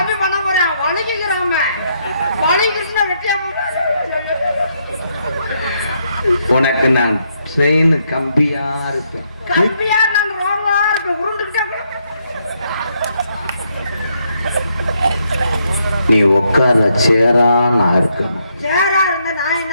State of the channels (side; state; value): both; inverted; correlation -0.75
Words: பண்ண போறேன். வலிக்கிறாம வலிக்கிறதுனா வெட்டியா உனக்கு நான் ட்ரெயின் கம்பியா இருப்பேன். கம்பியா நான் ரோவா இருப்பேன். உருண்டுகிட்டே நீ உட்கார சேரா நான் இருக்கணும். சேரா இருந்தா நான்